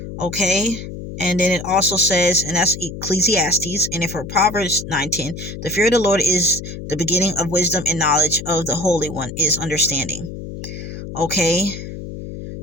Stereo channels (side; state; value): left; noise; hum, 9 dB below the sound